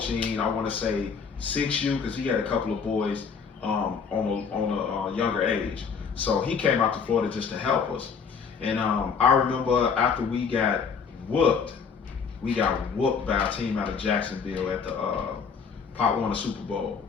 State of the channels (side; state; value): right; quieter; 6.0 dB